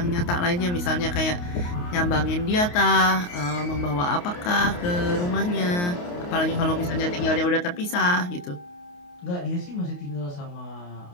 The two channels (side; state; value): right; late; 28 ms